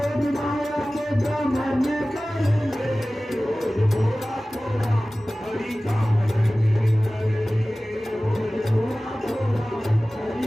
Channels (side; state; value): both; normal; correlation 0.97